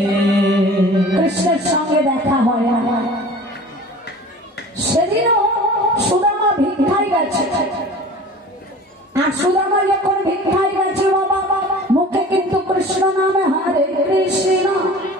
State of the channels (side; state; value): both; normal; correlation 0.41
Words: কৃষ্ণের সঙ্গে দেখা হয় না। সেদিনও সুদামা ভিক্ষায় গেছে, আর সুদামা যখন ভিক্ষায় গেছে বাবা, মুখে কিন্তু কৃষ্ণ নামে হরে কৃষ্ণ